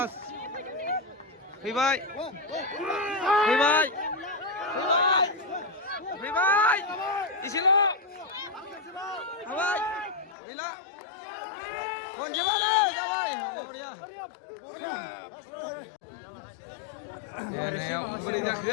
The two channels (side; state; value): right; drops out; at 10.4 s